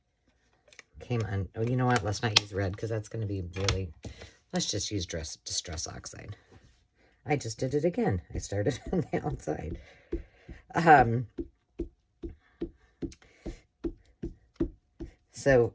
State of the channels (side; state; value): both; identical; correlation 1.00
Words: came on. Oh, you know what? Let's not use red because that's going to be really, let's just use Distress Oxide. I just did it again. I started on the outside. So